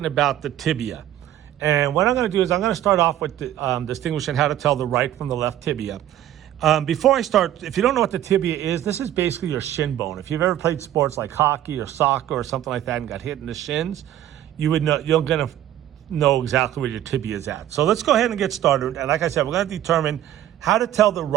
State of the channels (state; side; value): quieter; left; 12.2 dB